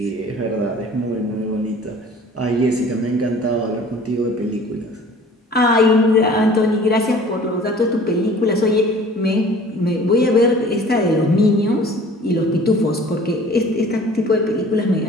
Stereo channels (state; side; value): normal; both; correlation 0.48